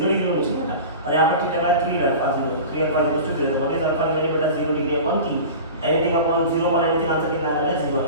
डिग्री होनी चाहिए बेटा, और यहाँ पर थीटा का 3 alpha 0, 3 alpha equal to 0। What is alpha की वैल्यू बेटा? 0 degree upon 3। Anything upon 0 upon anything answer कितना आ रहा है? 0 आ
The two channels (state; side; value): inverted; both; correlation -0.34